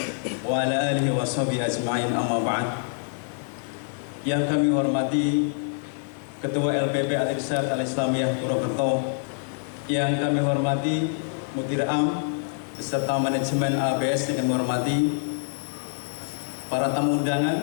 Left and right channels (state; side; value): silent; right; 61 dB below the other